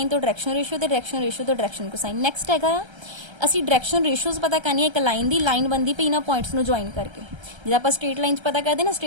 तो डायरेक्शन रेशो तो डायरेक्शन रेशो तो डायरेक्शन कोसाइन। नैक्सट हैगा आ असी डायरेक्शन रेशोज पता करनी है, एक लाइन की लाइन बनती पई इन्हां पॉइंट्स नूं ज्वाइन करके, जिद्दां आपां स्ट्रेट लाइन पता करते ना,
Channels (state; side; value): late; left; 1.3 ms